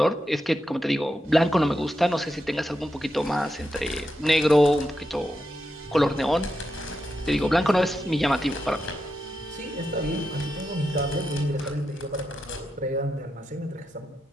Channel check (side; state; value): both; normal; correlation 0.87